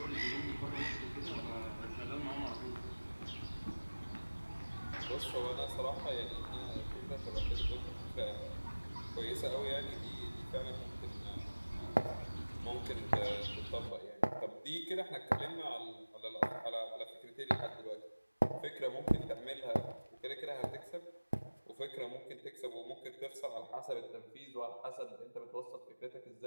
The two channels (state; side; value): inverted; both; correlation -1.00